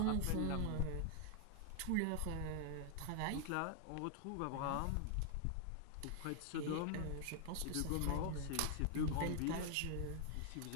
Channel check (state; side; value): different; both; correlation 0.00